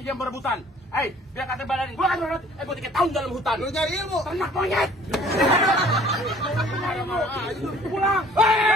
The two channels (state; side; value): normal; both; correlation 0.54